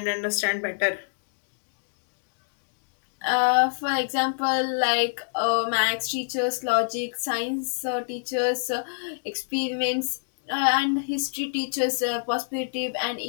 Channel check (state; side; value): silent; right; digital silence